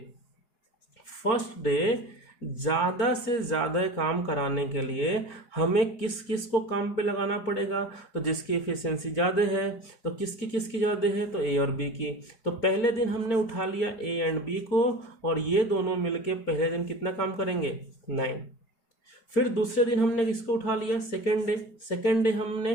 डे ज़्यादा से ज़्यादा काम कराने के लिए हमें किस किस को काम पे लगाना पड़ेगा, तो जिसकी एफिशिएंसी ज़्यादा है, तो किसकी किसकी ज़्यादा है, तो ए और बी की। तो पहले दिन हमने उठा लिया ए एंड बी को, और ये दोनों मिलके पहले दिन कितना काम करेंगे, 9। फिर दूसरे दिन हमने किसको उठा लिया, सेकेंड डे हमने,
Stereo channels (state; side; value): late; right; 4.4 ms